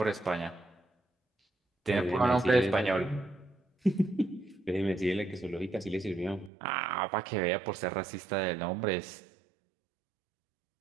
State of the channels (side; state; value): left; drops out; at 6.5 s